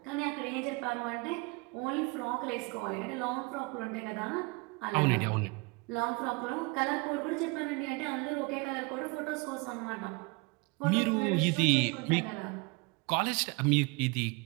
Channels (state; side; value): quieter; left; 27.9 dB